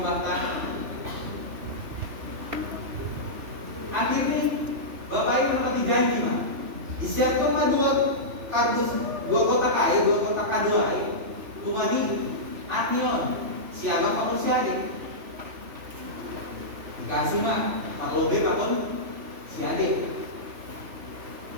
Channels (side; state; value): left; late; 3.0 ms